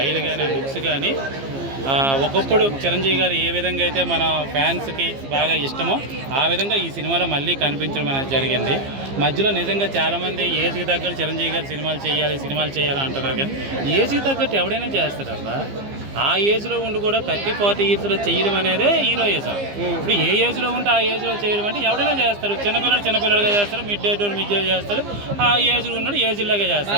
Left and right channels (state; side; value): late; left; 15 ms